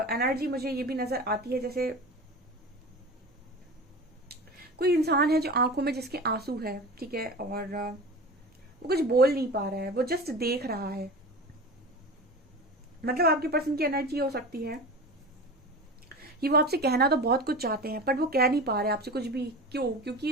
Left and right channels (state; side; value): normal; both; correlation 0.32